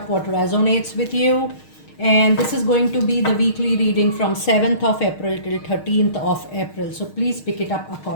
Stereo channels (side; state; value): right; late; 6.5 ms